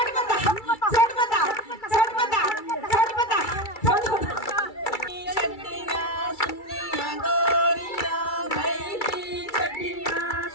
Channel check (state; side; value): late; right; 2.3 ms